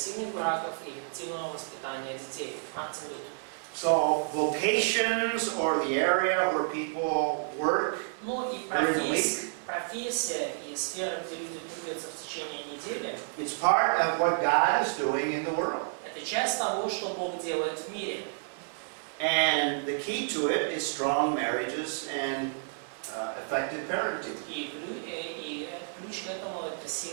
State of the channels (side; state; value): left; silent; digital silence